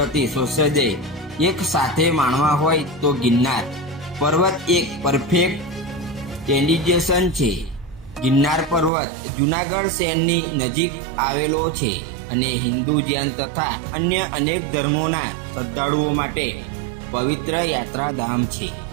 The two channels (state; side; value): drops out; left; at 8.9 s